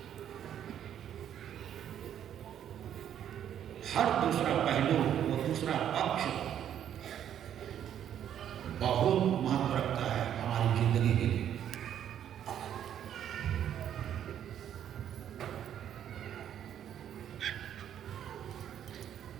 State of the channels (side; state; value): left; quieter; 10.0 dB